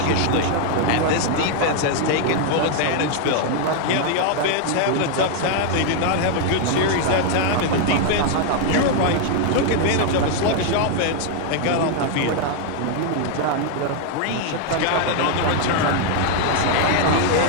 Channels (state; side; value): different; both; correlation 0.00